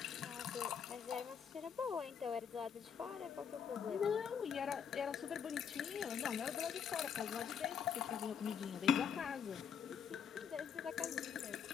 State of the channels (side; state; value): right; quieter; 7.5 dB